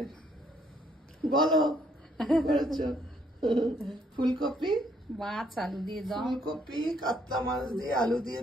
বলো করেছো ফুলকপি, মাছ, আলু দিয়ে দম। ফুলকপি কাতলা মাছ দিয়ে আলু দিয়ে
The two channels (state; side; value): normal; both; correlation 0.69